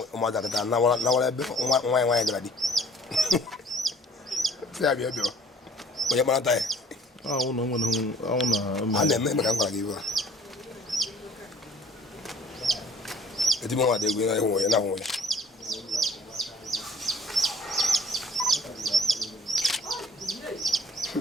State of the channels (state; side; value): normal; both; correlation 0.53